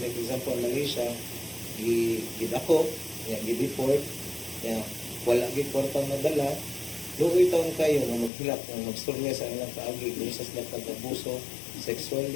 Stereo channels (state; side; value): drops out; right; at 8.3 s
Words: example Malaysia, gidako, gi-deport, wala gid kwarta madala, luoy taon kayo nga maghilak nga magstorya sa ilang kaagi kung sa sila pag-abuso